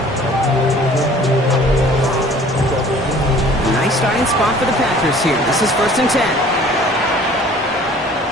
Nice starting spot for the Packers here. This is 1st and 10.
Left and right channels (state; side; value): normal; both; correlation 0.51